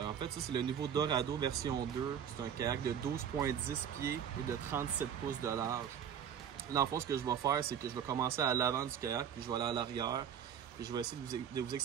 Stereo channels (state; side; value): quieter; left; 8.6 dB